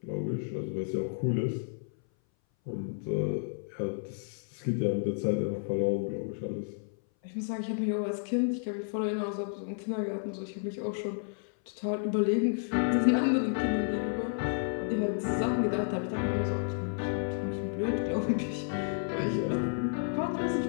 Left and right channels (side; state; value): right; silent; 57 dB below the other